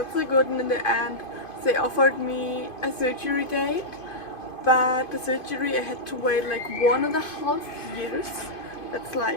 so good, and in the end they offered me a surgery date, but the surgery I had to wait like 1.5 years. That's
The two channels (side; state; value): right; late; 2.5 ms